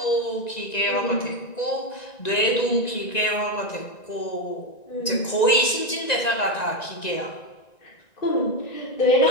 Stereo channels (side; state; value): right; late; 1.9 ms